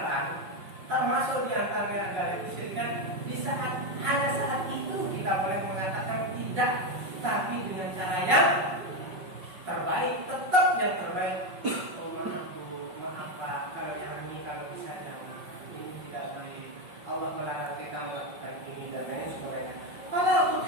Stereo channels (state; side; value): late; left; 5.4 ms